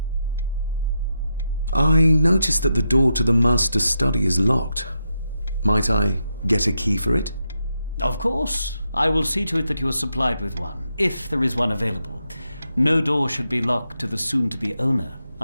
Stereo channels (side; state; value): both; inverted; correlation -0.85